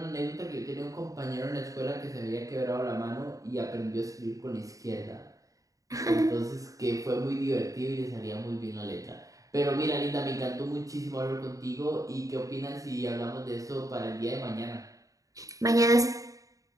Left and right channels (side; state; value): left; late; 0.16 ms